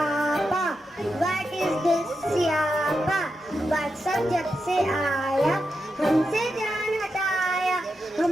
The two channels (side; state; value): both; normal; correlation 0.87